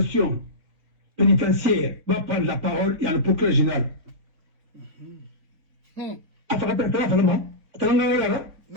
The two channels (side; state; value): left; late; 3.5 ms